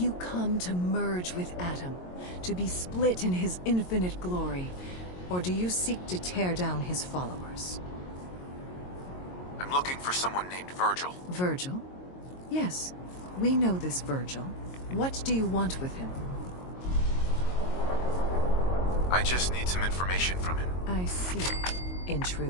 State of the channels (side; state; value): right; late; 22 ms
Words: come to merge with Atom? To be split in his infinite glory? Or do you seek to tear down his followers? I'm looking for someone named Virgil. Virgil? Yes, we know this Virgil. What do you want with him? I just need some information from him. I see. In